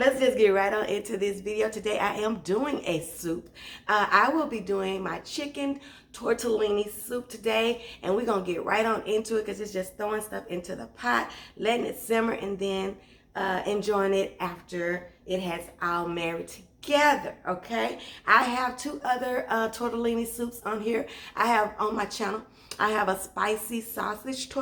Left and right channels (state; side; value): identical; both; correlation 1.00